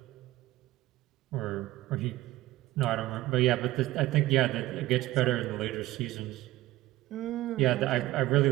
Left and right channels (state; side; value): quieter; left; 16.9 dB